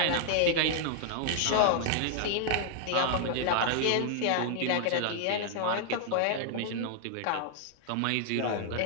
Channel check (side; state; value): both; different; correlation 0.00